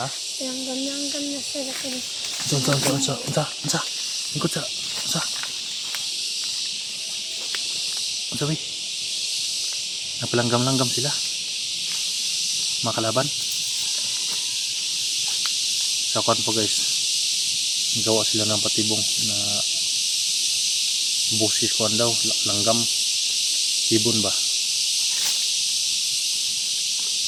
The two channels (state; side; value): identical; both; correlation 1.00